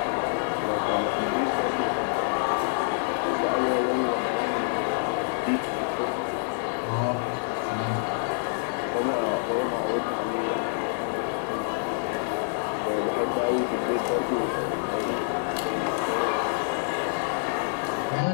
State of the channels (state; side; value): silent; right; digital silence